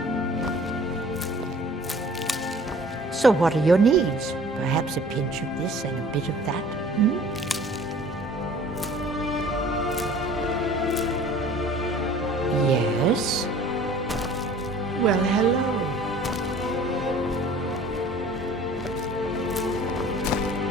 So what are your needs? Perhaps a pinch of this and a bit of that? Hmm? Yes? Well, hello.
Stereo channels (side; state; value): both; normal; correlation 0.49